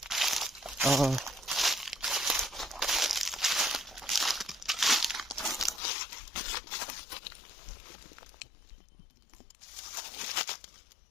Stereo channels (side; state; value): right; drops out; at 5.8 s